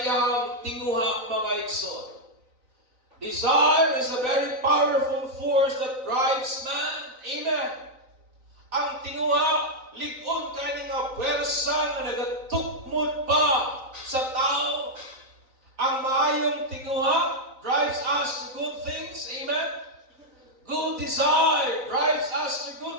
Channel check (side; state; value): left; late; 3.9 ms